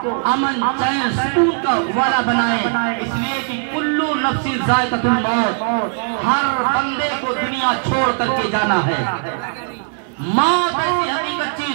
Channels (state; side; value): silent; left; 67 dB below the other